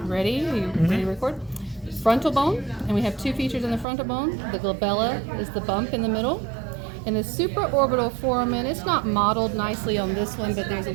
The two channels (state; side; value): drops out; left; at 3.9 s